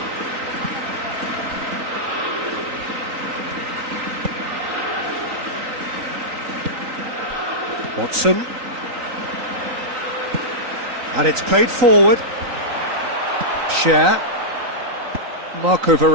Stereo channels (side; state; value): left; late; 3.9 ms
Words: Watson. And it's played forward. Cher. Marco